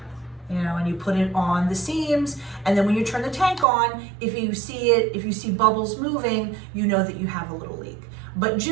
and you put it on the seams, and then when you turn the tank on, if you see bubbles moving, you know that you have a little leak. But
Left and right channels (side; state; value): left; drops out; at 3.7 s